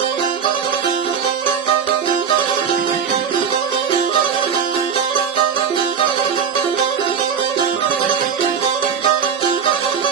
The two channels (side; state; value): left; quieter; 7.0 dB